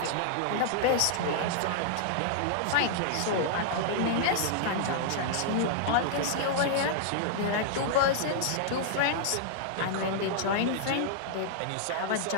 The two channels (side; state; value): both; different; correlation -0.01